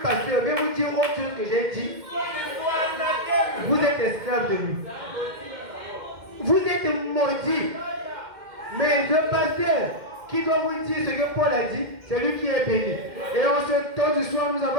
pasteur vient vous dire autre chose que j'ai dit, vous êtes esclave de lui. Vous êtes maudit. Mais le pasteur qui va vous dire ce que Paul a dit, c'est lui qui est béni. Et en ce temps du soir, nous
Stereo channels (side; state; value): left; late; 2.1 ms